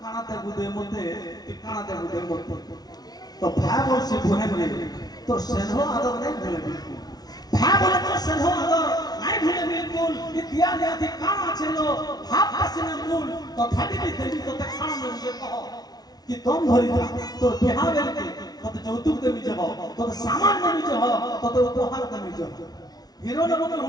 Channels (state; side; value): late; right; 0.19 ms